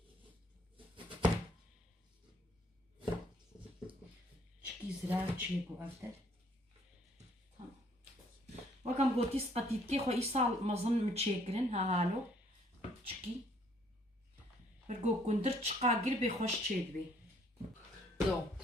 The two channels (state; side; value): normal; both; correlation 0.63